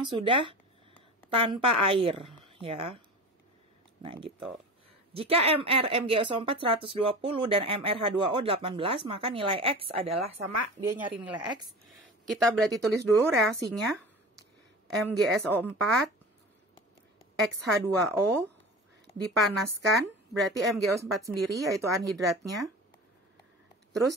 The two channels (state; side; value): normal; both; correlation 0.34